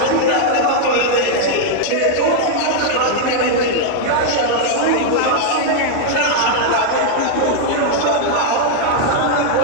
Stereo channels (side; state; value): both; different; correlation 0.00